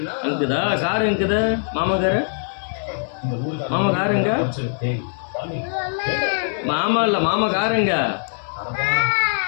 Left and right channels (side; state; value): right; silent; 64 dB below the other